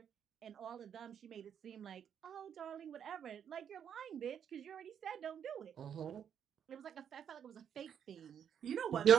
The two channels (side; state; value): left; quieter; 8.4 dB